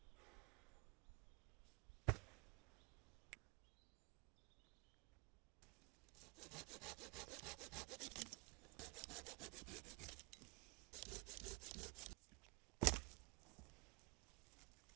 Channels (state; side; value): quieter; left; 29.6 dB